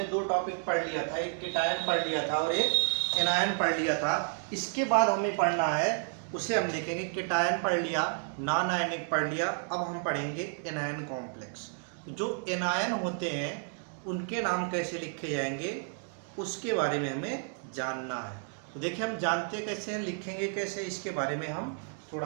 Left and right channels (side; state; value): left; silent; 57 dB below the other